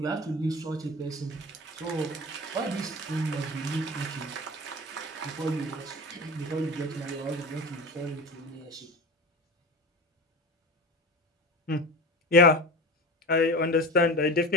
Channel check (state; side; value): normal; both; correlation 0.30